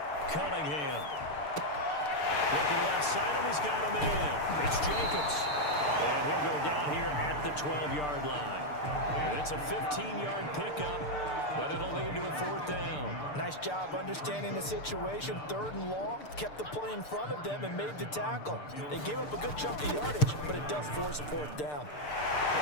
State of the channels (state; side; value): late; right; 6.7 ms